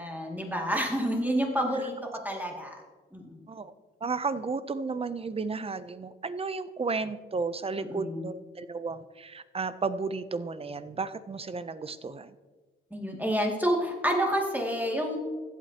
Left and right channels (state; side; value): normal; both; correlation 0.60